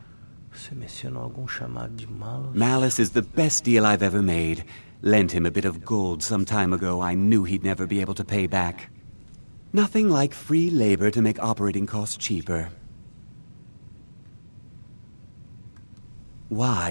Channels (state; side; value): inverted; both; correlation -1.00